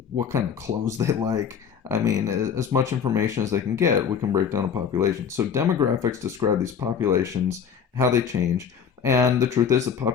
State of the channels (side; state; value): right; quieter; 7.3 dB